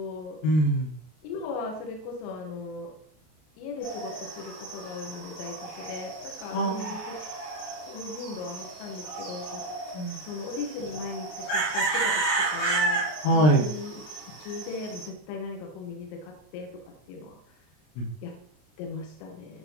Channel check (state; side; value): late; right; 33 ms